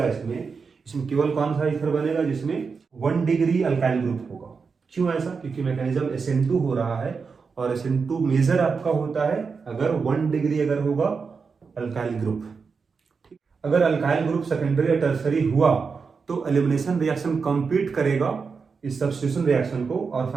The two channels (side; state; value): left; quieter; 5.2 dB